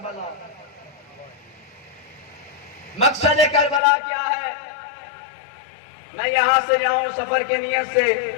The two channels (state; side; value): drops out; right; at 3.8 s